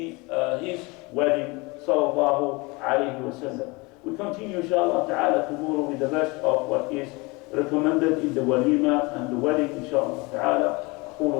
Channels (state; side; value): quieter; right; 25.9 dB